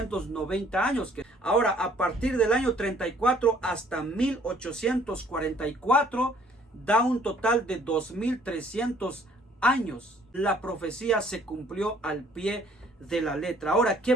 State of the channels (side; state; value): both; normal; correlation 0.59